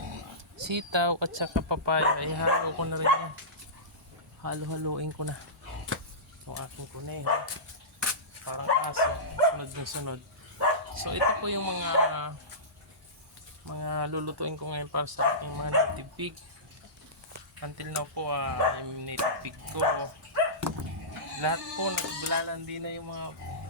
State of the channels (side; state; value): both; normal; correlation -0.20